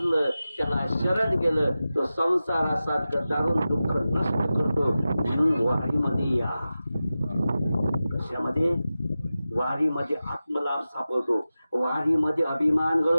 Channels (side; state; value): both; inverted; correlation -0.94